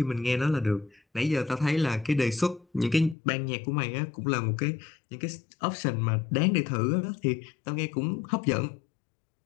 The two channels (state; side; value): drops out; right; at 3.2 s